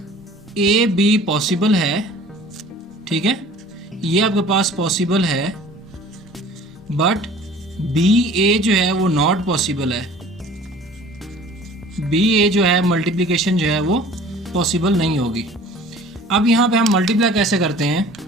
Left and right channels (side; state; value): both; normal; correlation 0.48